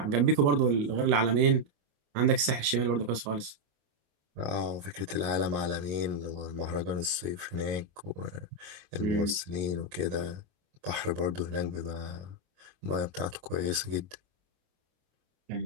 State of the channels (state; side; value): late; left; 28 ms